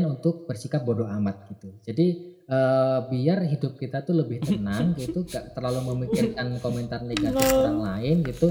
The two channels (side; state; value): both; identical; correlation 1.00